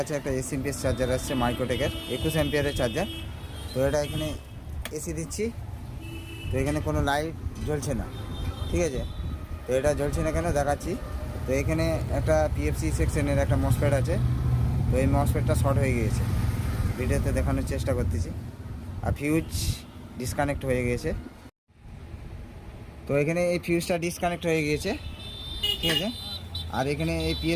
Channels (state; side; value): identical; both; correlation 1.00